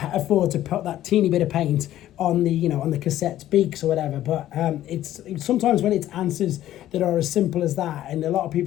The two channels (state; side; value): quieter; right; 13.2 dB